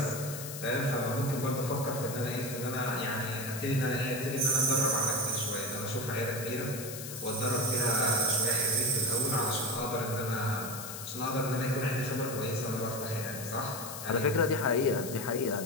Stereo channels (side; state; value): left; noise; hiss, 9 dB below the sound